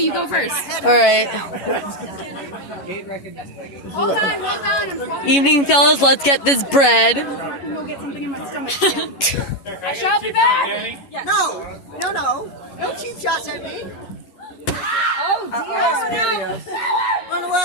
go first. All right. Evening, fellas. Let's get this bread. No. No cheap shots at me. Run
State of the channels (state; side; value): late; right; 11 ms